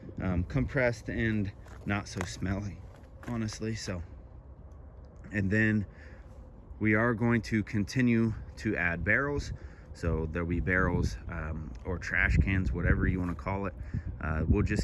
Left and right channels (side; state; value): both; identical; correlation 1.00